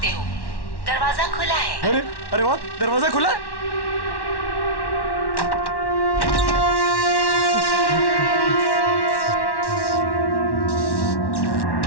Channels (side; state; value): right; late; 1.1 ms